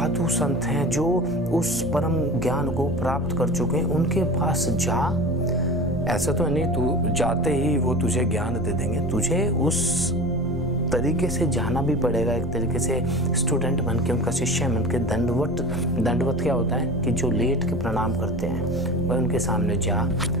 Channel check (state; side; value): normal; both; correlation 0.34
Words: संत हैं, जो उस परम ज्ञान को प्राप्त कर चुके हैं, उनके पास जा। ऐसा तो नहीं तू जाते ही वो तुझे ज्ञान दे देंगे, तुझे उस तरीके से जाना भी पड़ेगा, एक तरीके से स्टूडेंट बन के, उनका शिष्य बन के। दंडवत क्या होता है कि जो लेट के प्रणाम करते हैं, वह उनके सामने जा,